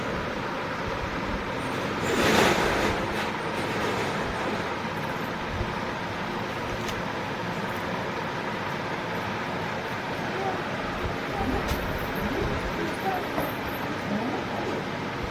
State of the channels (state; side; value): identical; both; correlation 1.00